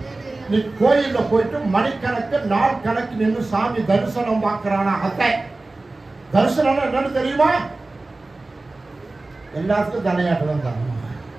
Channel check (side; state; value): left; quieter; 3.1 dB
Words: நீ கோயில்ல போயிட்டு மணிக்கணக்கு நாள் கணக்கு நின்று சாமி தரிசனம் பார்க்கிறானா? அத்தை தரிசனம் என்னன்னு தெரியுமா? எல்லாத்துக்கும் தலையாட்டுதான் தான்.